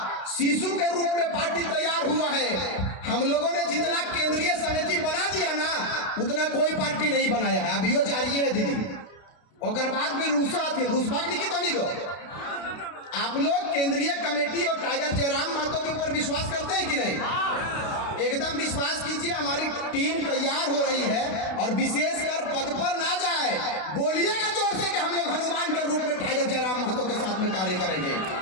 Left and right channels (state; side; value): late; right; 32 ms